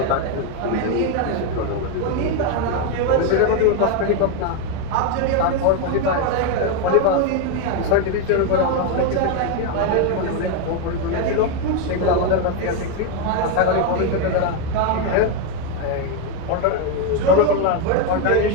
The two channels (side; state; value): both; different; correlation 0.02